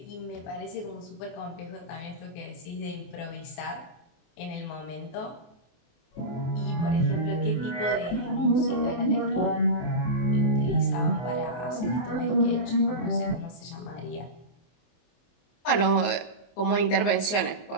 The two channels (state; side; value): late; right; 24 ms